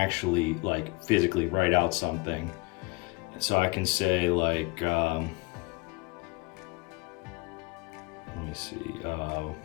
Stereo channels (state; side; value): quieter; right; 26.4 dB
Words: like physically write out something. So I can say like, let me see,